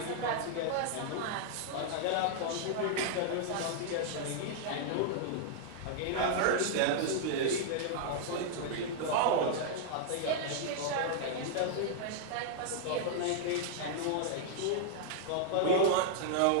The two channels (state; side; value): different; both; correlation -0.01